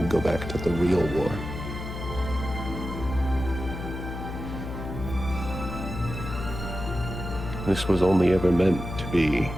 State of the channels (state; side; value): noise; left; hum, 7 dB below the sound